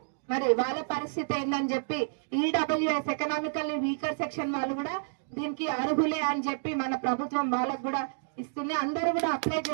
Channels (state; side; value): silent; left; digital silence